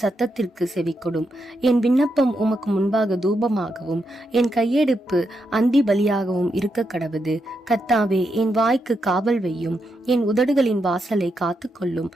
சத்தத்திற்கு செவிக்கொடும். என் விண்ணப்பம் உமக்கு முன்பாக தூபமாகவும் என் கையெடுப்பு அந்தி பலியாகவும் இருக்க கடவுது. கர்த்தாவே, என் வாய்க்கு காவல் வையும், என் உதடுகளின் வாசலை காத்துக்கொள்ளும்.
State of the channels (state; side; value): normal; both; correlation 0.83